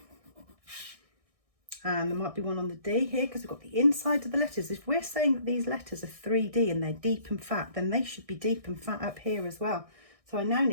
And there might be one on the D here, because we've got the inside of the letters. If we're saying that these letters are 3D and they're deep and fat, then they should be deep and fat up here as well. So I now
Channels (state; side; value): late; left; 1.6 ms